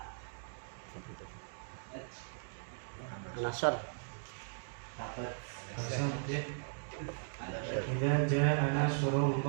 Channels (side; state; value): left; silent; digital silence